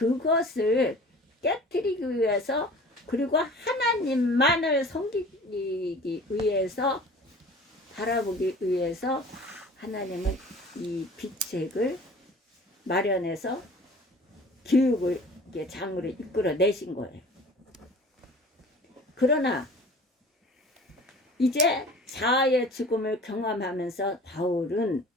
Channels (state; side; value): normal; both; correlation 0.44